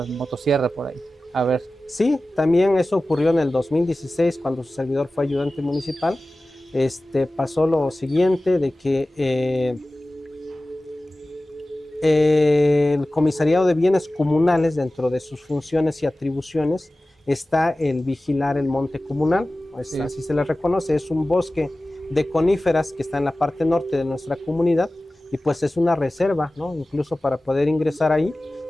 motosierra por ahí. A ver. Sí, también eso ocurrió en el 2016 cuando su servidor fue ayudante municipal. Pasó lo siguiente de que el Comisariado de Bienes Comunales, dentro de sus funciones y atribuciones, está el vigilar el monte comunal, sí. Así se le reconoce, es un bosque de coníferas que está en la parte norte de nuestra comunidad y pues es una reserva, ¿no? Incluso para poder ingresar ahí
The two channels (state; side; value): normal; both; correlation 0.96